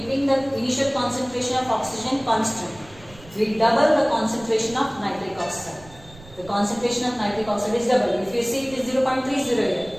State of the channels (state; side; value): noise; right; rumble, 21 dB below the sound